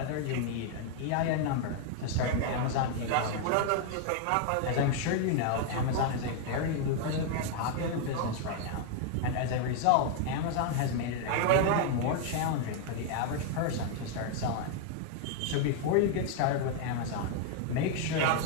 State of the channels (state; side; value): different; both; correlation 0.00